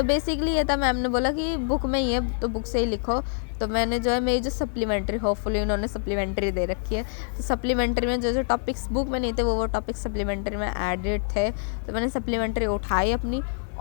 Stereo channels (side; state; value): right; silent; 61 dB below the other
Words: बेसिकली ये था, मैम ने बोला कि बुक में ही है तो बुक से ही लिखो। तो मैंने जो है मेरी जो सप्लीमेंट्री, होपफुली उन्होंने सप्लीमेंट्री दे रखी है, तो सप्लीमेंट्री में जो जो टॉपिक्स बुक में नहीं थे वो टॉपिक्स सप्लीमेंट्री में एडेड थे। तो मैंने सप्लीमेंट्री उठाई अपनी